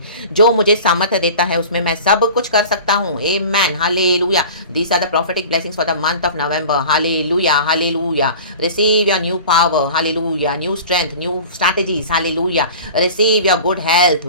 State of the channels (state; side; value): inverted; both; correlation -0.39